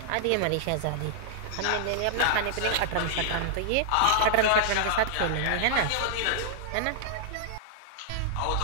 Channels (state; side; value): different; both; correlation -0.01